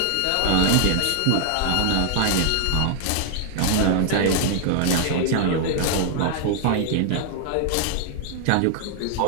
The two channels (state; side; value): different; both; correlation 0.00